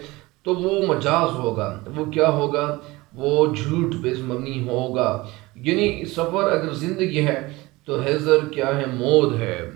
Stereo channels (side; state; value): left; quieter; 21.1 dB